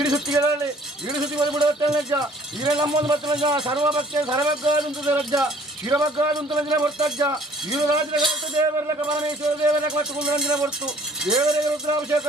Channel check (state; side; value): normal; both; correlation 0.55